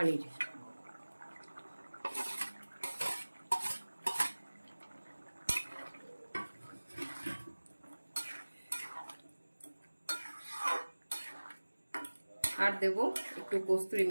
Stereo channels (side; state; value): both; inverted; correlation -1.00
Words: আর দেবো একটু কস্তুরি